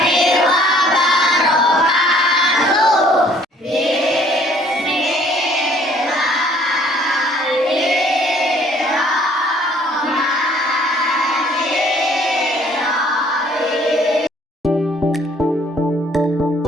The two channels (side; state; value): both; normal; correlation 0.59